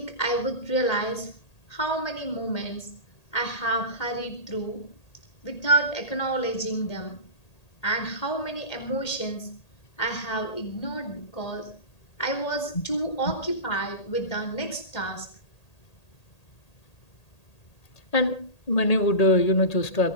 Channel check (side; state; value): right; late; 1.8 ms